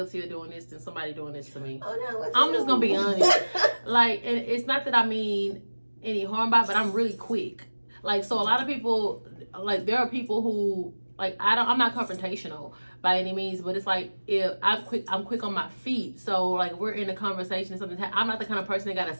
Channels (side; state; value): both; inverted; correlation -1.00